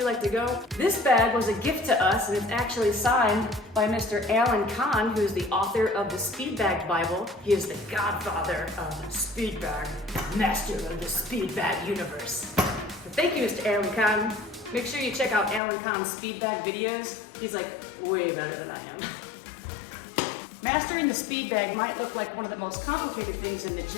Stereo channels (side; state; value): right; drops out; at 15.6 s